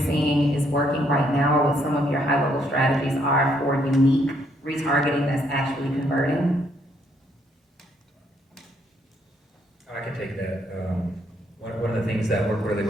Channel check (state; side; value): normal; both; correlation 0.71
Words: is working right now, or what some of your high-level strategies are for unique retargeting that's actually converting? I can take that. One of the things that work really